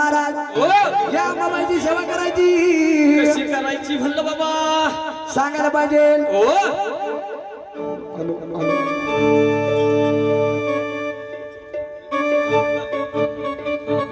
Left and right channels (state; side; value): identical; both; correlation 1.00